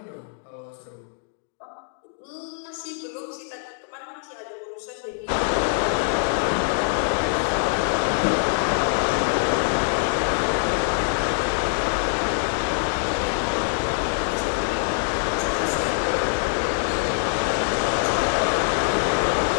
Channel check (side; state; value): right; silent; digital silence